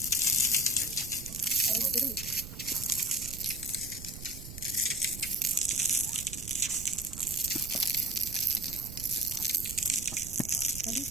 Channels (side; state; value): right; noise; rumble, 12 dB below the sound